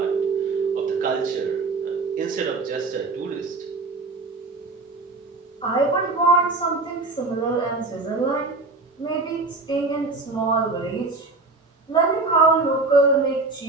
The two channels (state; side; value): quieter; left; 3.5 dB